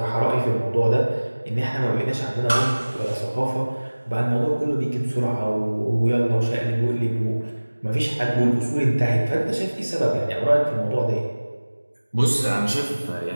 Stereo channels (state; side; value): inverted; both; correlation -1.00